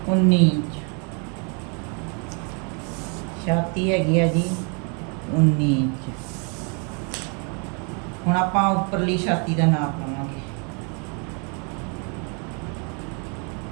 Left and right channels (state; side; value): quieter; left; 36.3 dB